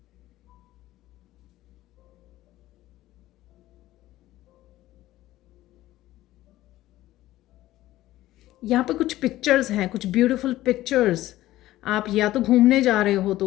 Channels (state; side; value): quieter; right; 15.6 dB